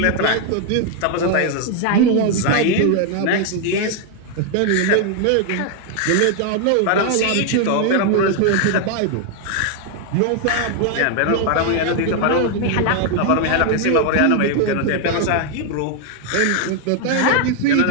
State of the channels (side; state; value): both; different; correlation 0.00